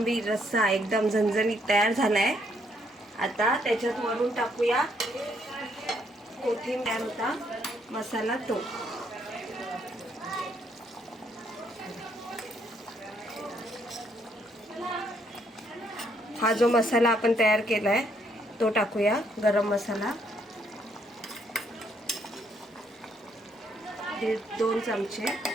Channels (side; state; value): both; normal; correlation 0.71